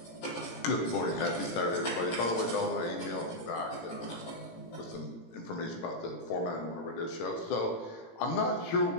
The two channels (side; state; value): right; late; 18 ms